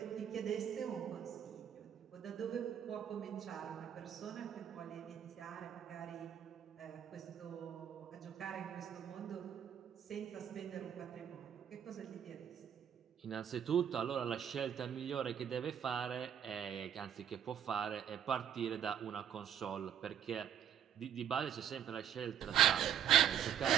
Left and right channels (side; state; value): left; quieter; 9.4 dB